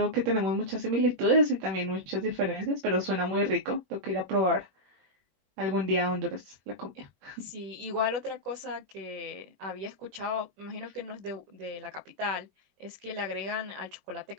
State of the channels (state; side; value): late; left; 21 ms